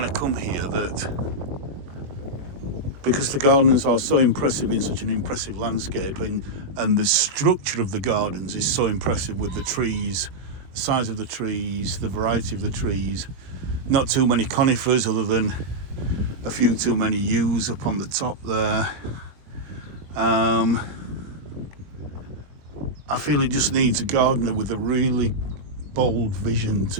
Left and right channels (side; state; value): left; late; 21 ms